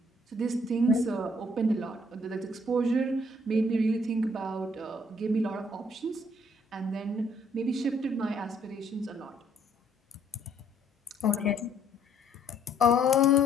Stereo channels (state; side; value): normal; both; correlation 0.65